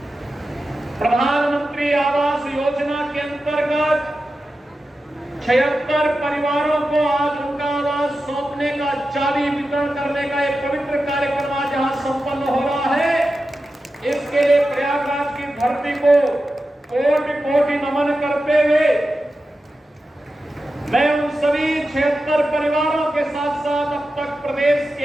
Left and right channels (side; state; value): both; normal; correlation 0.92